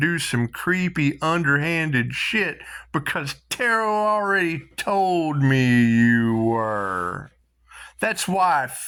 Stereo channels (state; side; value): identical; both; correlation 1.00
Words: some creepy underhanded shit because Tarot already told me you were. That's why I